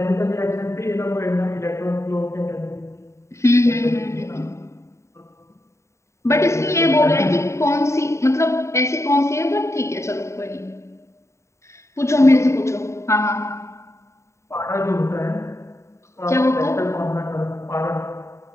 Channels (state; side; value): late; right; 0.14 ms